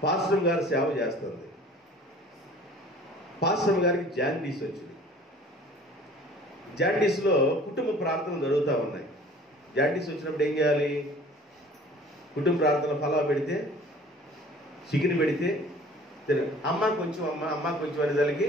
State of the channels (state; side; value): normal; both; correlation 0.49